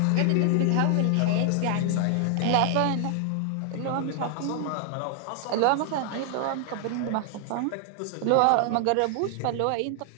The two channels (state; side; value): different; both; correlation 0.00